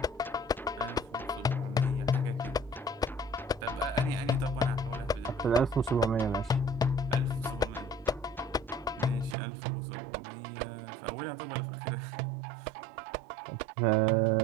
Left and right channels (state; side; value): drops out; left; at 9.3 s